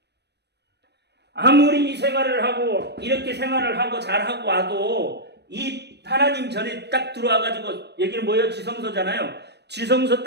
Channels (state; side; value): late; left; 0.49 ms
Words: 아무리 이 생활을 하고 이렇게 생활을 하고 잘하고 와도 이 하나님 전에 딱 들어와가지고, 여기는 뭐예요? 지성소잖아요. 지성소